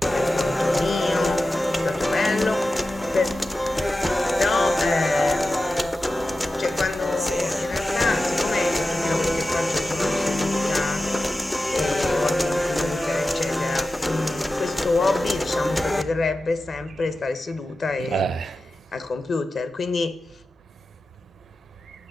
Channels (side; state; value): both; normal; correlation 0.93